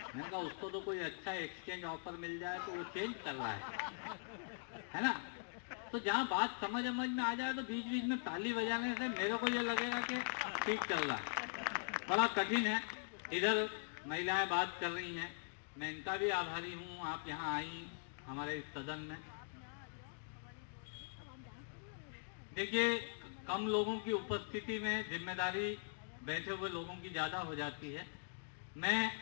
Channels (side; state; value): right; silent; digital silence